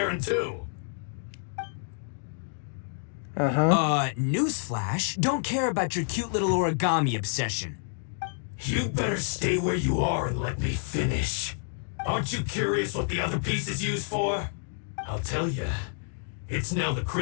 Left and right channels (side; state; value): right; silent; digital silence